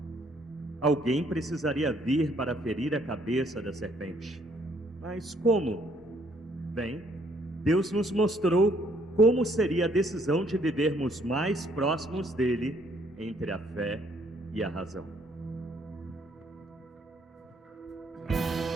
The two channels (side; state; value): both; normal; correlation 0.66